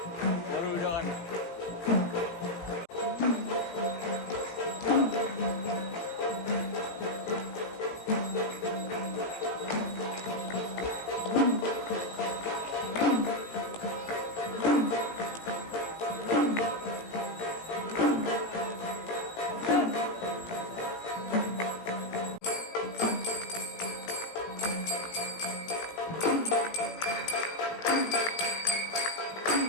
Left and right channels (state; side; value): late; right; 17 ms